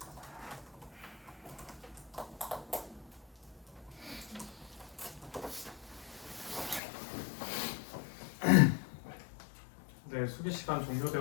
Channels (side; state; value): right; drops out; at 6.8 s